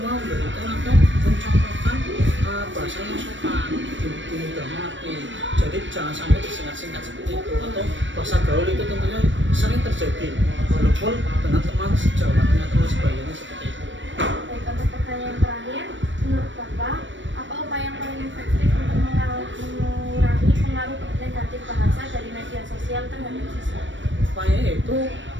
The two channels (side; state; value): left; late; 0.55 ms